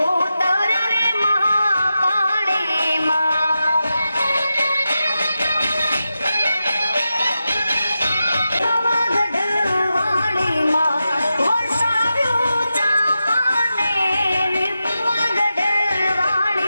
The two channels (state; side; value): inverted; both; correlation -0.90